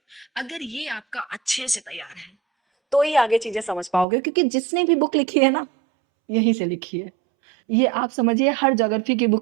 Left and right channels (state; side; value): drops out; left; at 4.0 s